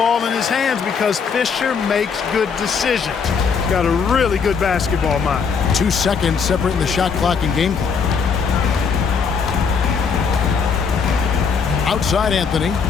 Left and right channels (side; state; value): right; quieter; 5.9 dB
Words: in his hands because Fisher makes good decisions. Got a really good basketball mind. 2 seconds separating the shot clock and game clock. Outside Anthony.